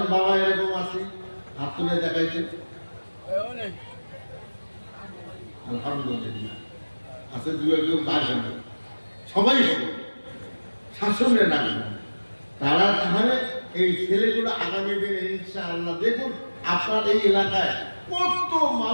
বাবা এরকম আছে? হাত তুলে দেখাইছে, আলহামদুলিল্লাহ আছে, দু একজন বাইরে, সবাই হবে। শাসনে নামবে, তারা তাহলে এই ছেলেগুলো আগামী দিনে ইনশাআল্লাহ দেখুন আপনার এই এলাকায় কত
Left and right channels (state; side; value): inverted; both; correlation -1.00